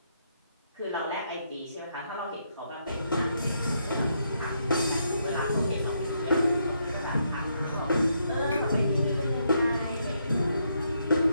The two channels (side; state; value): both; inverted; correlation -0.77